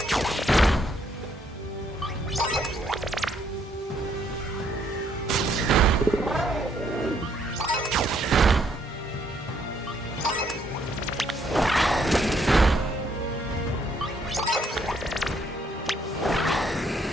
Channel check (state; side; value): normal; both; correlation 0.69